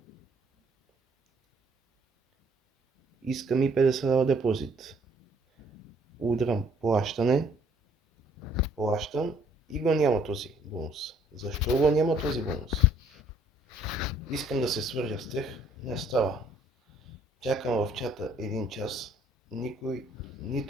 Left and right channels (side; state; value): both; normal; correlation 0.61